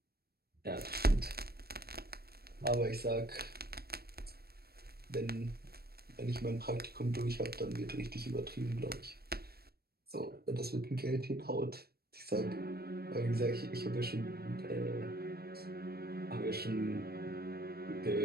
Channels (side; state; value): left; late; 0.46 ms